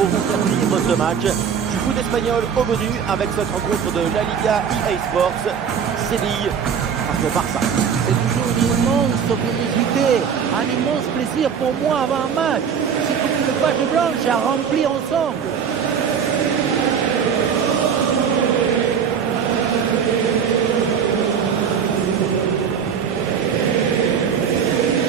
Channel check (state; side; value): quieter; left; 7.2 dB